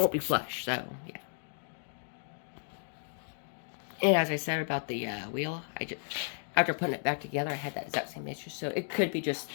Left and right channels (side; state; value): right; silent; digital silence